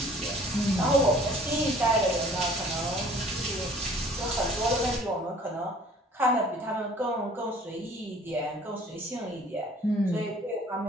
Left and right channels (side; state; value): both; normal; correlation 0.52